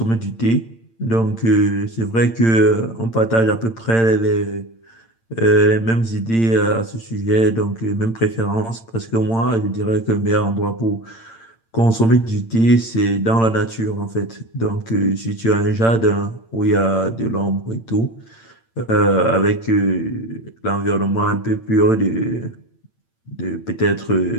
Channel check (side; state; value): right; late; 8.8 ms